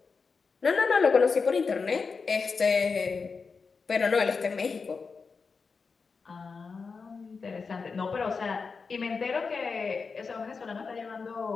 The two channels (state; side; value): quieter; right; 4.9 dB